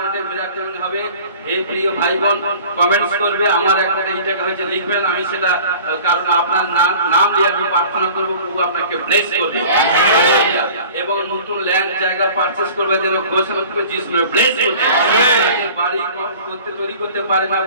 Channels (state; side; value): inverted; both; correlation -0.45